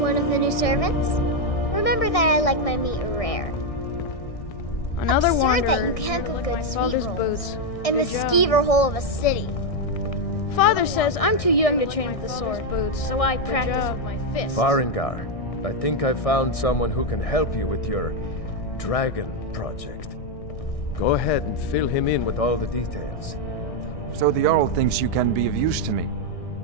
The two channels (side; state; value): right; late; 1.6 ms